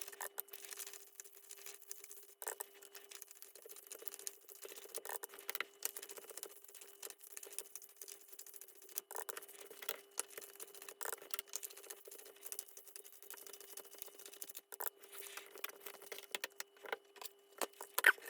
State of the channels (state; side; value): identical; both; correlation 1.00